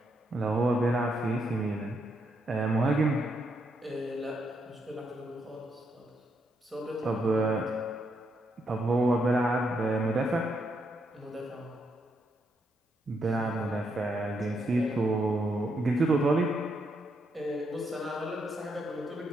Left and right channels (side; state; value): both; normal; correlation 0.78